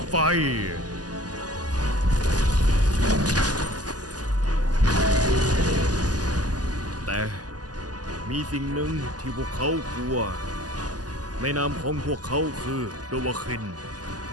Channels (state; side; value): late; left; 0.68 ms